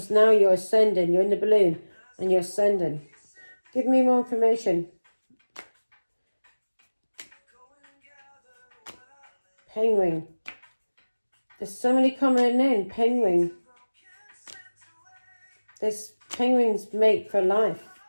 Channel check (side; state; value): both; inverted; correlation -1.00